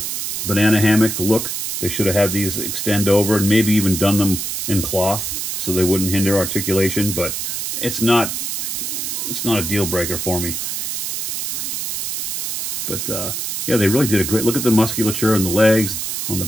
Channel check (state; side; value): noise; right; hiss, 3 dB below the sound